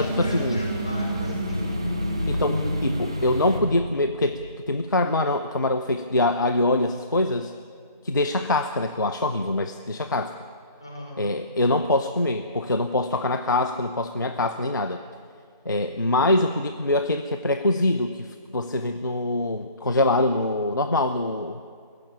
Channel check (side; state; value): both; inverted; correlation -0.51